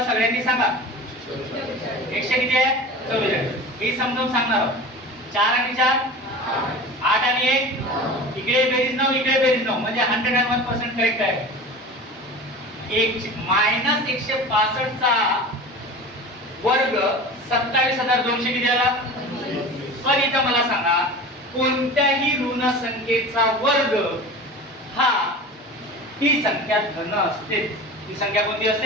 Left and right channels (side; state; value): both; normal; correlation 0.34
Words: सगळ्यांनी सांगा. 100 किती आहे? 44. मी समजावून सांगणार आहोत. 4 आणि 4 8 आणि 1 इकडे बेरीज 9 इकडे बेरीज 9 म्हणजे 101% करेक्ट आहे. मायनस 165 चा वर्ग 27,200 किती आला? पण इथं मला सांगा, कोणत्याही ऋण संख्येचा वर्ग हा ती संख्या धन असते. ती संख्या कोणती